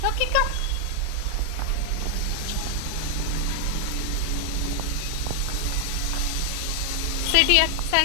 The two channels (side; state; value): both; different; correlation 0.00